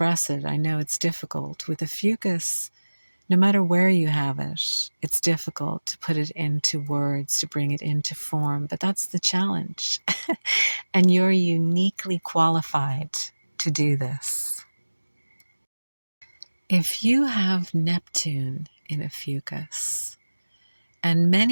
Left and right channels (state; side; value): inverted; both; correlation -1.00